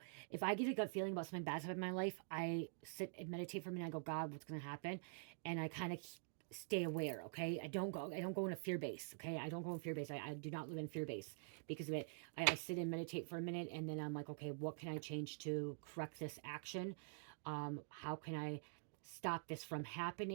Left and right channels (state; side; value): silent; left; digital silence